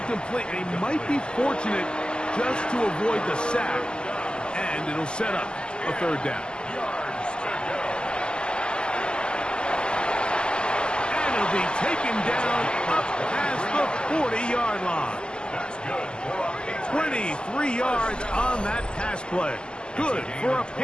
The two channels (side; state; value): right; late; 0.052 ms